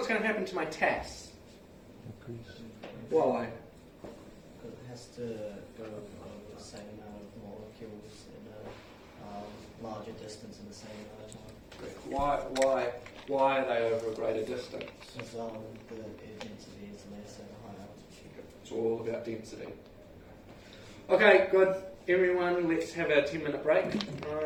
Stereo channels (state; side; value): identical; both; correlation 1.00